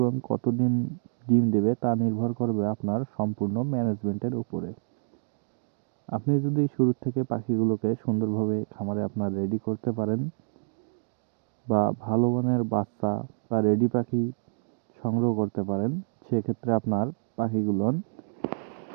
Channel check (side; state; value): left; silent; digital silence